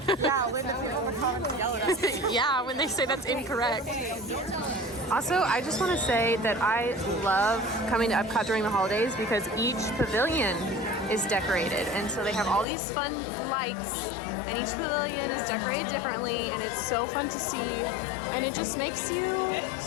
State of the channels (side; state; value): right; drops out; at 12.7 s